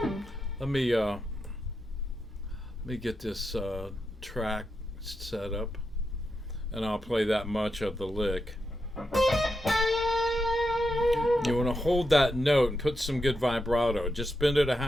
Let me get this track set up, and I'll play that much of the lick. You want to hold that note and put some good vibrato. Just bend it a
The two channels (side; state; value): both; normal; correlation 0.86